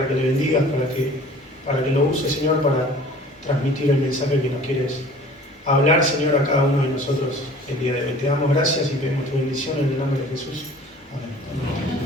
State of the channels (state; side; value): normal; both; correlation 0.47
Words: que le bendigas, para que lo uses, Señor, para transmitir el mensaje que nos quieres hablar, Señor, a cada uno de nosotros el día de hoy. Te damos gracias y pedimos tu bendición en el nombre de Jesús. Amén.